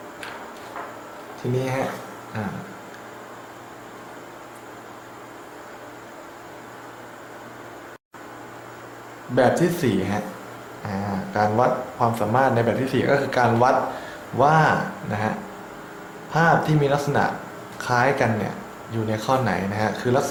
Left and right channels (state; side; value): identical; both; correlation 1.00